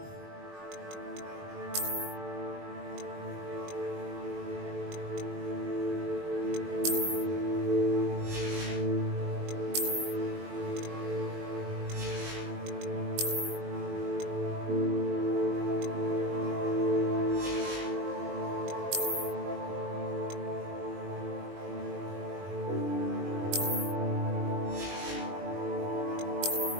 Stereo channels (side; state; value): left; late; 21 ms